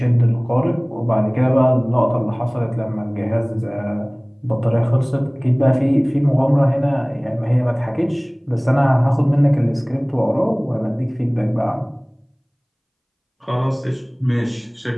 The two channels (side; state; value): both; identical; correlation 1.00